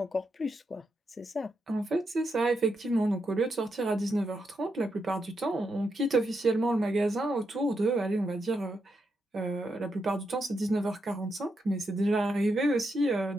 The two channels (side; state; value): both; normal; correlation 0.83